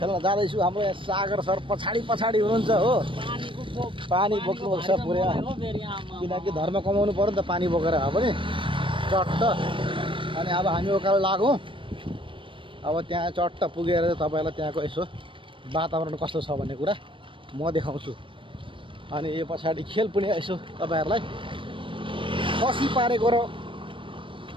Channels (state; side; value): late; left; 0.25 ms